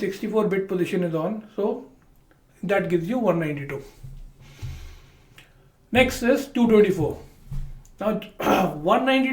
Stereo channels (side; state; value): both; identical; correlation 1.00